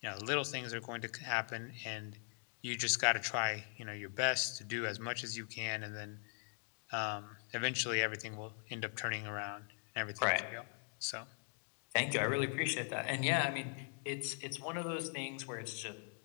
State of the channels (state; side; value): silent; right; 51 dB below the other